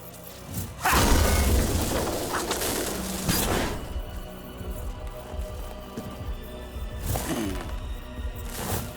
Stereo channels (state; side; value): identical; both; correlation 1.00